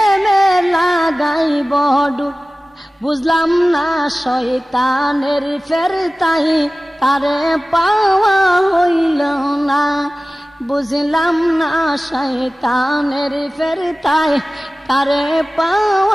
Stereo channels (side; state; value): both; normal; correlation 0.97